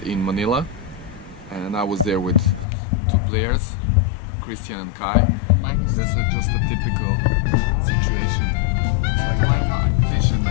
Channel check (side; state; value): right; drops out; at 2.7 s